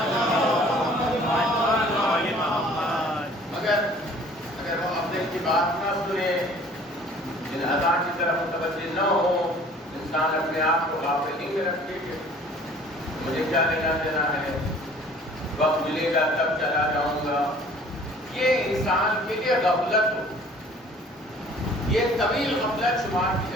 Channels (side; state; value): both; normal; correlation 0.52